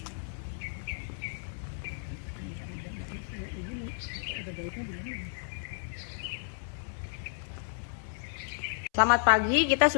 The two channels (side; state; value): right; silent; 56 dB below the other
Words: Selamat pagi, kita